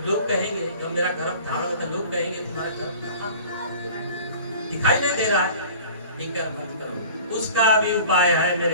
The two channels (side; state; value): both; inverted; correlation -0.44